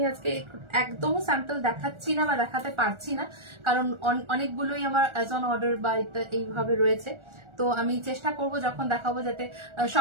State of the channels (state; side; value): late; left; 1.4 ms